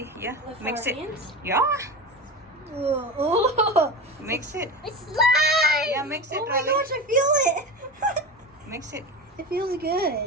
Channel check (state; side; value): normal; both; correlation 0.26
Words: Yeah, With mix our it. hands? Yeah, Oh, mix it. It's slime. Yeah, mix it, oh my Riley. gosh, I feel it. Mix it. It feels